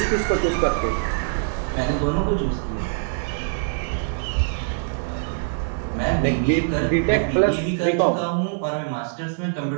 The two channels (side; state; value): left; silent; digital silence